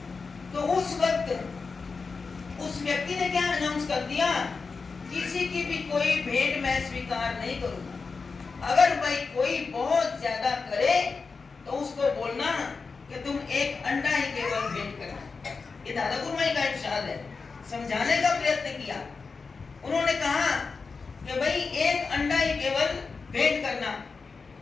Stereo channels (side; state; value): right; quieter; 4.6 dB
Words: तो उस वक्त उस व्यक्ति ने क्या अनाउंस कर दिया किसी की भी कोई भेंट मैं स्वीकार नहीं करूंगा। अगर भाई कोई बहुत ज्यादा करे तो उसको बोलना कि तुम एक अंडा ही केवल भेंट करना। ये दादा गुरुमाई का इरशाद है। समझाने का प्रयत्न किया। उन्होंने कहा कि भाई एक अंडा ही केवल भेंट करना।